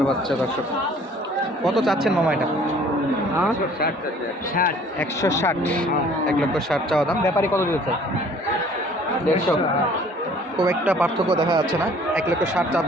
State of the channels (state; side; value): normal; both; correlation 0.54